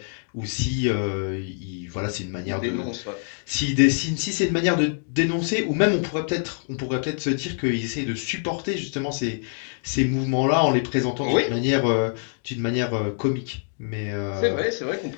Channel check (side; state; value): right; silent; digital silence